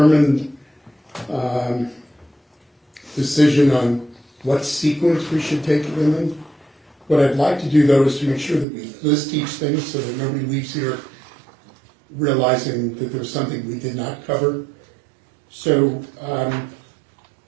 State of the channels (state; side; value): drops out; left; at 8.7 s